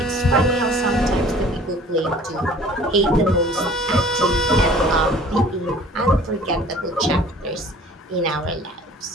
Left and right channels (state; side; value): normal; both; correlation 0.49